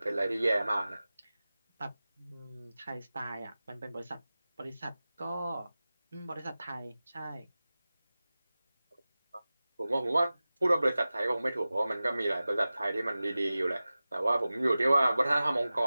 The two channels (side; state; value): both; inverted; correlation -0.96